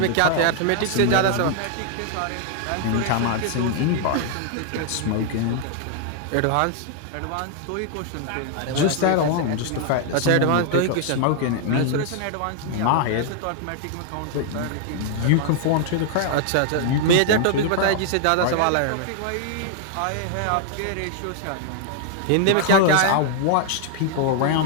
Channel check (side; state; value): both; different; correlation 0.00